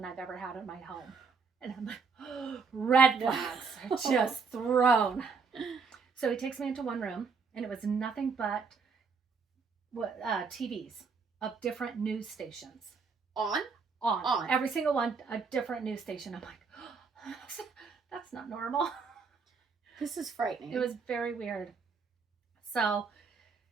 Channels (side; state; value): left; quieter; 5.1 dB